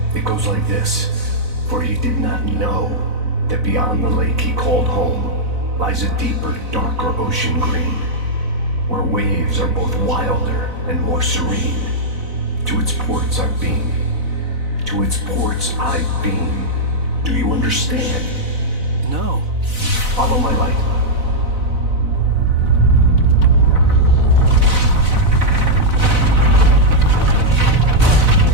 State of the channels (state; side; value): late; left; 4.0 ms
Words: It goes like this. For he did not know that beyond the lake he called home lies a deeper, darker ocean green, where waves are both wilder and more serene. To its ports I've been. To its ports I've been. Do you understand? No. Follow my light.